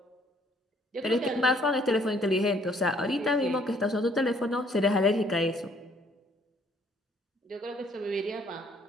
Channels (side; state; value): both; normal; correlation 0.63